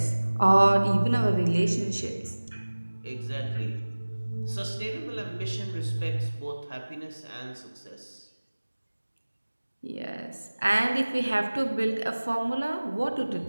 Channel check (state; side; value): inverted; both; correlation -1.00